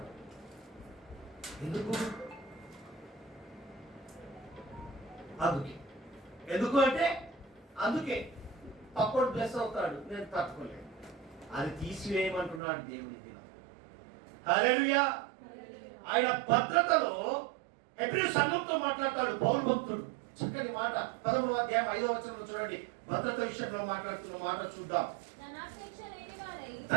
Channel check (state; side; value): drops out; left; at 12.6 s